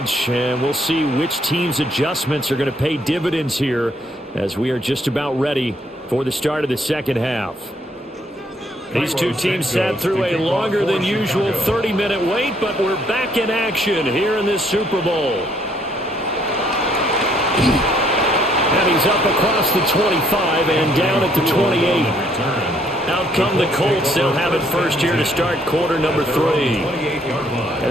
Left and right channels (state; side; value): normal; both; correlation 0.67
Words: And we'll see which team's adjustments are going to pay dividends here as we are just about ready for the start of the second half. These two teams sat through a longer than usual 30-minute wait, but we're back in action here in this Super Bowl. And he's up across the 25 and down at the 28. Out come the Colts. They'll have it first here to start quarter number 3. And